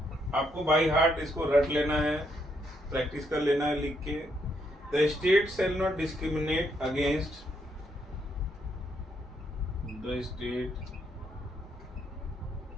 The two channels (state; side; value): normal; both; correlation 0.75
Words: आपको बाई हार्ट इसको रट लेना है, प्रैक्टिस कर लेना है लिख के। The state shall not discriminate against the state